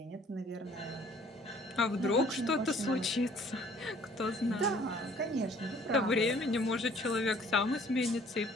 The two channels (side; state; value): both; normal; correlation 0.57